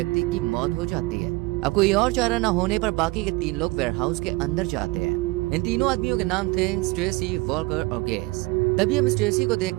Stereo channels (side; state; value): left; quieter; 23.5 dB